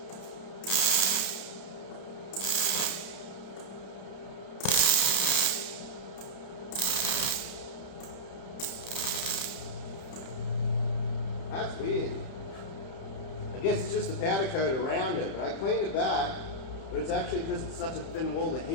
That's weird. I guess it's just the powder coat around it, but I cleaned it back, but it's actually because it's such a thin wall, the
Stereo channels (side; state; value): right; late; 31 ms